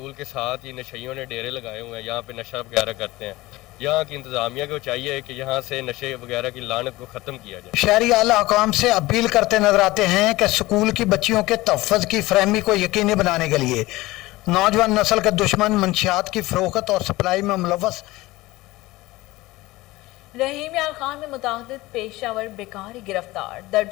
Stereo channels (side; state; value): right; quieter; 19.3 dB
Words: के साथ ही नशइयों ने डेरे लगाए हुए हैं, यहाँ पे नशा वगैरह करते हैं। यहाँ की इंतज़ामिया को चाहिए कि यहाँ से नशे वगैरह की लानत को ख़त्म किया जाए। शहरी आला हुकाम से अपील करते नजर आते हैं कि स्कूल की बच्चियों के तहफ़्फ़ुज़ की फरहमी को यकीनी बनाने के लिए नौजवान नस्ल के दुश्मन मंशियात की फरोख्त और सप्लाई में मुलव्वस रहीम यार खान में मुतादिद पेशावर बेकारी गिरफ्तार,